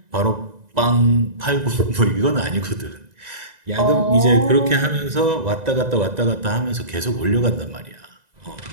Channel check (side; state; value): left; late; 2.0 ms